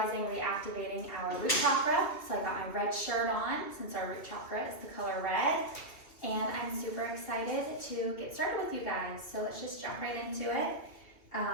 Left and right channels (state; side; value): late; right; 2.5 ms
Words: reactivating our root chakra. So I got my red shirt on since our root chakra is the color red. And I'm super excited to get started with you guys. So let's just jump right into it.